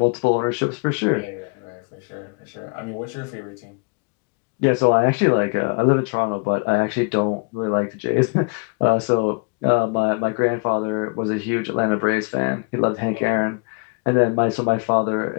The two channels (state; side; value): quieter; right; 33.2 dB